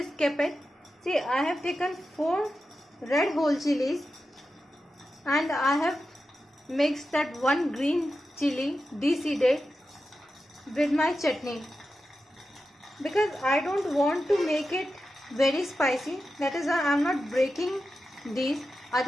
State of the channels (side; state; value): both; normal; correlation 0.91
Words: skip it. See, I have taken 4 red whole chilies, and I have mixed that 1 green chili deseeded with my chutney, because I don't want to make it very spicy. That is why I am not breaking these.